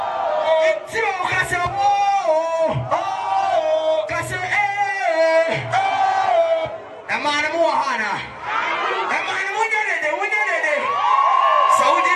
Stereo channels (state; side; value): identical; both; correlation 1.00